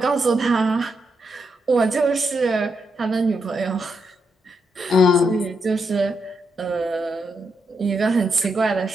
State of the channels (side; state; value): both; normal; correlation 0.82